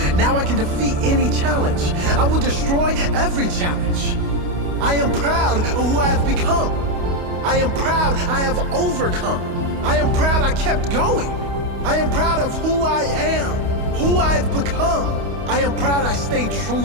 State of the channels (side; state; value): left; late; 28 ms